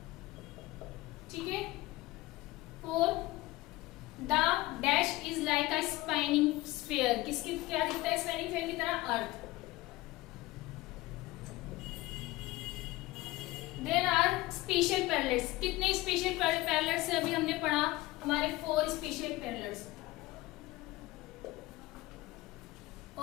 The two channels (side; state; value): right; quieter; 19.2 dB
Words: ठीक है। 4, the dash is like a spinning sphere, किसकी क्या दिखता है, स्पाइनिंग स्फीयर की तरह, अर्थ। देयर आर स्पेशल पैरेलल्स, कितने स्पेशल पैरेलल्स है अभी हमने पढ़ा, हमारे 4 special parallels.